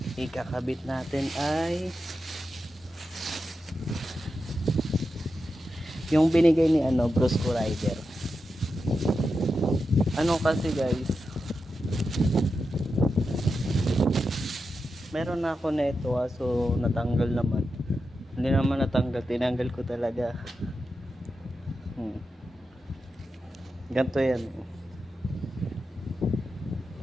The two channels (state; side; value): normal; both; correlation 0.89